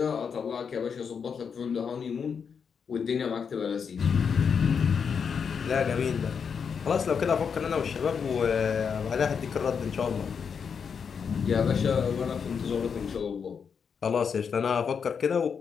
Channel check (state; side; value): quieter; right; 6.5 dB